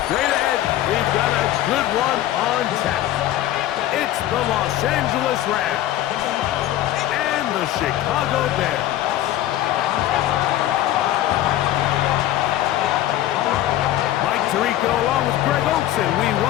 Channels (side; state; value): right; quieter; 13.5 dB